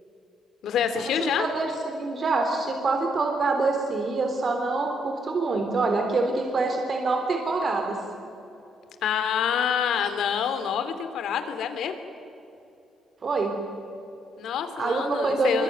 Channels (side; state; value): both; normal; correlation 0.71